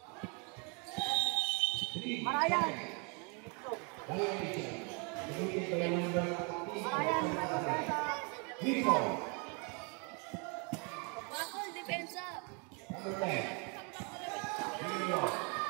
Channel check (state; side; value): quieter; left; 34.6 dB